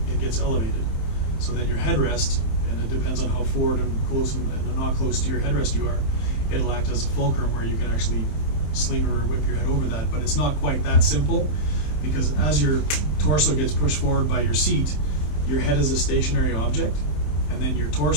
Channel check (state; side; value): late; right; 27 ms